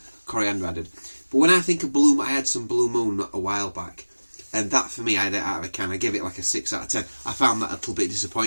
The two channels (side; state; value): both; inverted; correlation -1.00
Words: coriander added. But when I think of I had some Blue Moon a while back, and that for me, I give it like a 6 out of 10. I found that a little bit